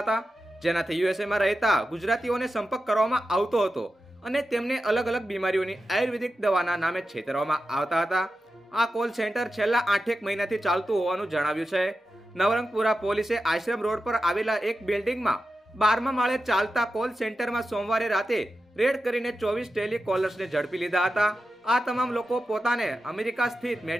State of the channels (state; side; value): normal; both; correlation 0.91